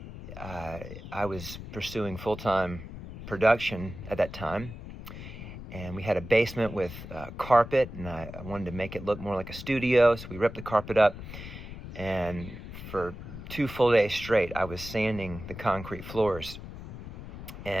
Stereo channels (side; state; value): left; noise; rumble, 11 dB below the sound